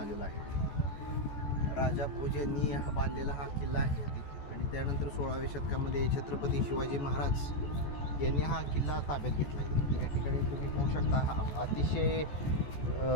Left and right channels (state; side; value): late; right; 14 ms